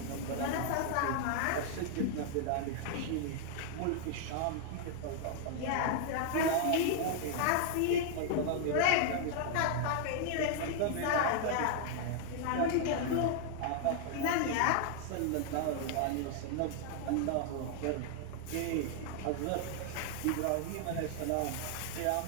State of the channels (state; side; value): different; both; correlation 0.00